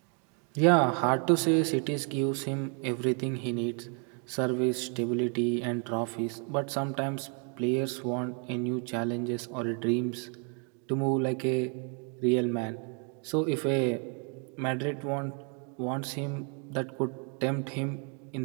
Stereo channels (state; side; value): quieter; left; 38.8 dB